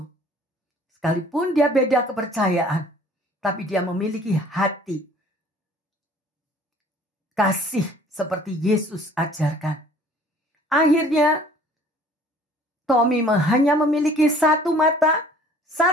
Sekalipun dia beda kepercayaan. Tapi dia memiliki hati kasih seperti Yesus ajarkan. Akhirnya Tommy hanya memiliki 1 mata,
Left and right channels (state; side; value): normal; both; correlation 0.53